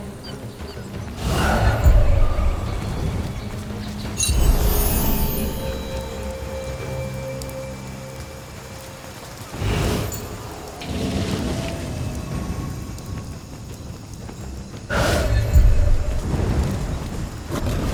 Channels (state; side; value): identical; both; correlation 1.00